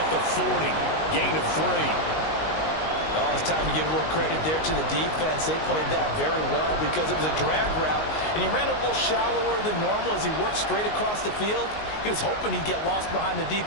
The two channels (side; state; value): right; late; 19 ms